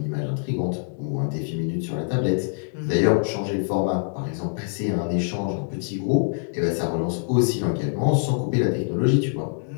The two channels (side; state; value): right; silent; digital silence